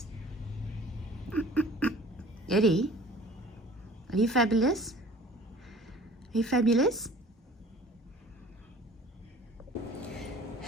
Eddie, are you fabulous? Are you fabulous?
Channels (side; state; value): both; normal; correlation 0.48